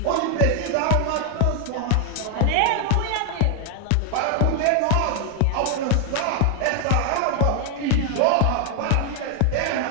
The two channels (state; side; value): different; both; correlation 0.00